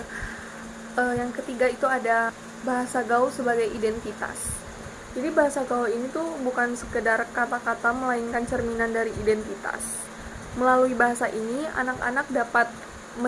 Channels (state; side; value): identical; both; correlation 1.00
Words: yang ketiga, itu ada bahasa gaul sebagai identitas. Jadi bahasa gaul ini tuh bukan sekedar kata-kata, melainkan cerminan dari identitas. Melalui bahasa ini, anak-anak dapat